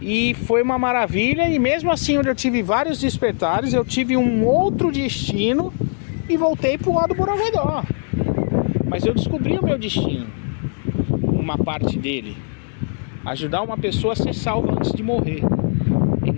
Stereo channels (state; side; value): silent; right; 57 dB below the other